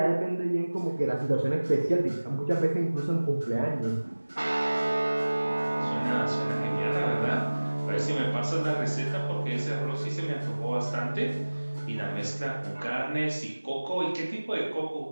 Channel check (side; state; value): both; inverted; correlation -1.00